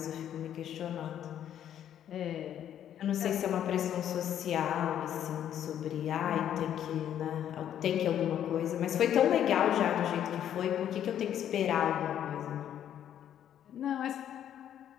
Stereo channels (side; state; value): right; quieter; 10.3 dB